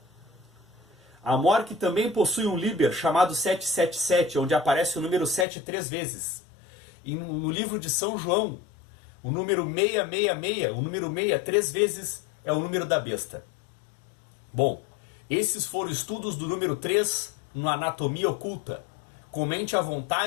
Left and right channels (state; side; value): drops out; right; at 5.5 s